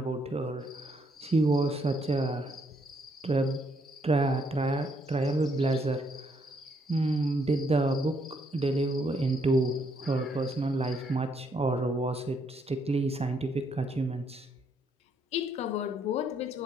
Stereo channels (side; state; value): both; normal; correlation 0.72